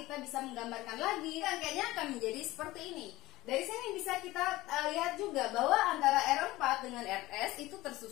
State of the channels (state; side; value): quieter; right; 18.1 dB